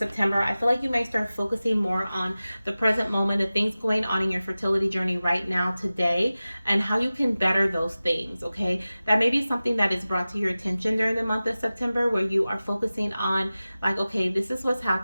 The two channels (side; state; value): both; inverted; correlation -0.96